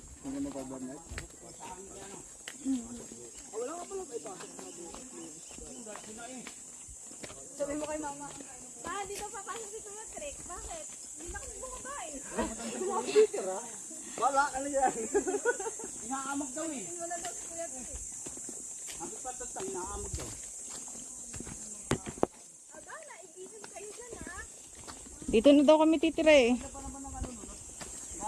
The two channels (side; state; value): both; identical; correlation 1.00